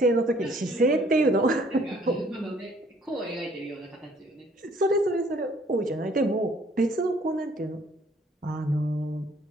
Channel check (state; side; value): normal; both; correlation 0.60